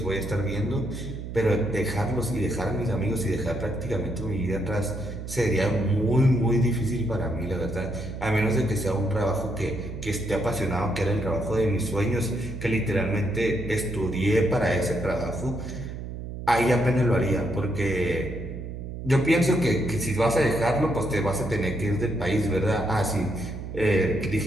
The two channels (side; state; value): right; noise; hum, 8 dB below the sound